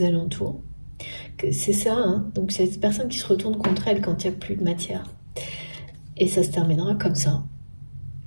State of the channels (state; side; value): inverted; both; correlation -1.00